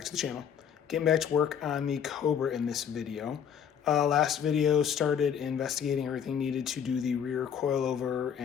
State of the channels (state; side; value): quieter; right; 8.2 dB